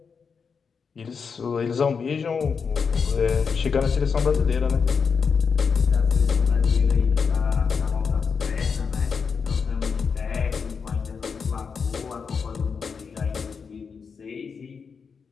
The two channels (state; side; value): quieter; right; 5.8 dB